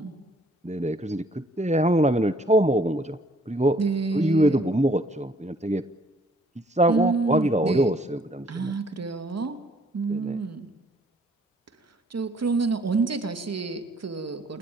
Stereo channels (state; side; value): normal; both; correlation 0.61